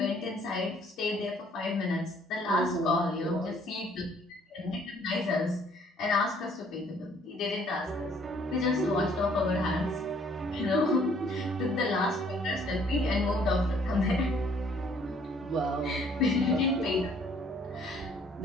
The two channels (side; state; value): both; normal; correlation 0.61